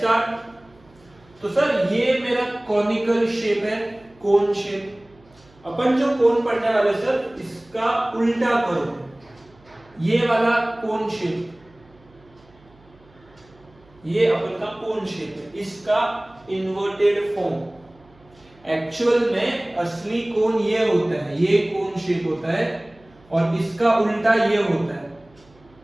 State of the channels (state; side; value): noise; right; hum, 29 dB below the sound